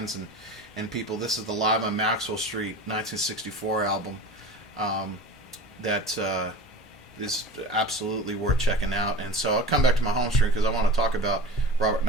and people. This is the Live on Maxwell Street 1964 album that is absolutely worth checking out. And so I'll come back to my home stream because I want to talk about Robert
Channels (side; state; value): both; normal; correlation 0.34